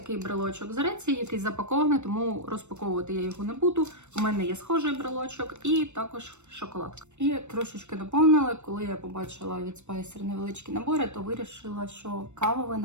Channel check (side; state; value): left; late; 0.83 ms